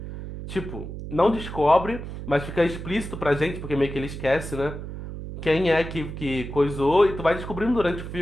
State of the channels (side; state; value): right; noise; hum, 9 dB below the sound